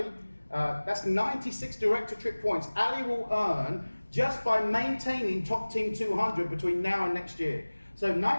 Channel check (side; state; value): both; inverted; correlation -1.00